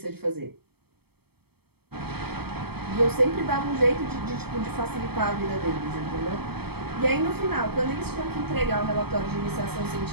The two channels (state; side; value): late; left; 0.97 ms